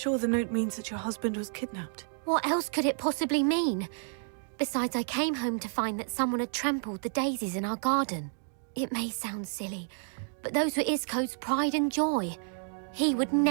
the note means that your husband was kidnapped? What else could it possibly mean? Besides, I came home to find that someone had trampled the daisies in our garden. It may sound silly, but those were Isco's pride and joy. He would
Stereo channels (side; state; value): left; silent; 58 dB below the other